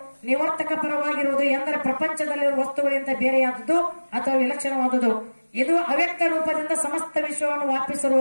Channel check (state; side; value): inverted; both; correlation -1.00